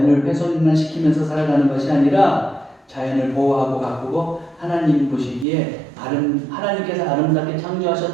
훼손만 시키면서 살아가는 것이 아니라 자연을 보호하고 가꾸고 하나님 보시기에 하나님께서 아름답게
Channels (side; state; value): left; drops out; at 5.5 s